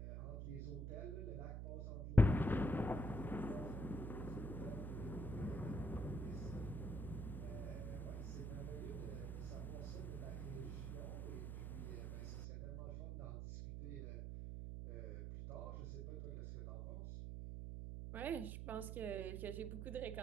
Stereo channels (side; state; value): right; noise; hum, 3 dB below the sound